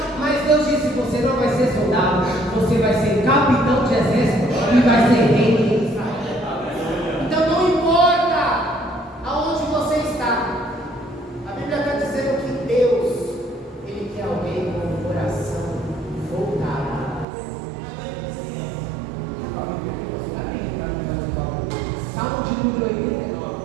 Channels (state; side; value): drops out; left; at 17.2 s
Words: mas Deus disse: você não vai ser soldado, você vai ser capitão de exército e vai ser rei de Israel. Então não importa aonde você está, a Bíblia está dizendo que Deus ele quer alguém com o coração voltado. Salmo de número 89.